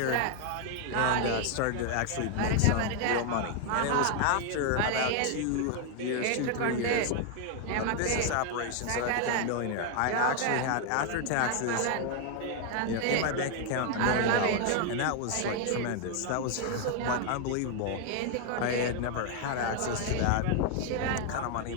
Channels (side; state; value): both; different; correlation 0.01